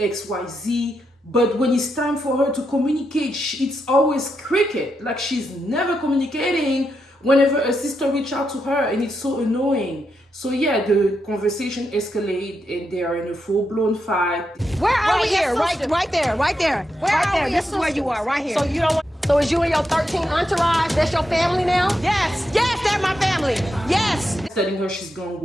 Y, Z. But when it's time for her to communicate, it's always cricket. Like she's never communicating whenever a sister reaches out to her, and it's so annoying. So yeah, the conversation escalated and they are in a full-blown fight. Where are we here? Right there. This is where you are, right here. So you don't want... So is you and your 13 entourage, that's your family now? Yes, they're my family. Yes. Telling her she's gonna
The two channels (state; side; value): normal; both; correlation 0.84